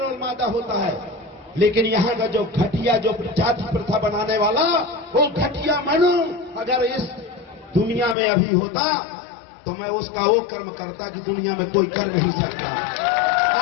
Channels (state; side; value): drops out; right; at 8.2 s